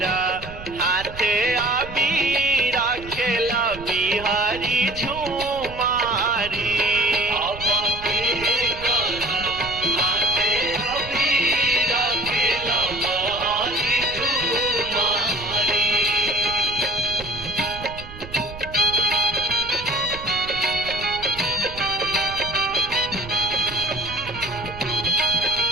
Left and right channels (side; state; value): right; noise; rumble, 14 dB below the sound